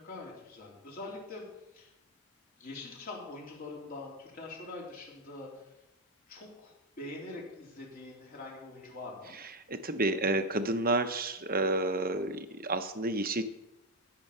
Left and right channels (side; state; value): both; normal; correlation 0.06